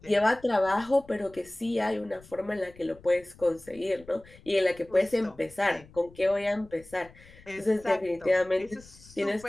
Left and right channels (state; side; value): noise; left; rumble, 23 dB below the sound